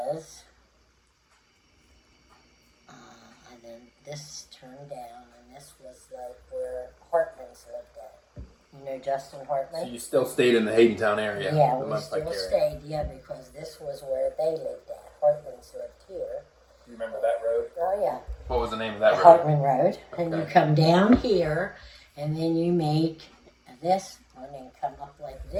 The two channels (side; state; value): both; identical; correlation 1.00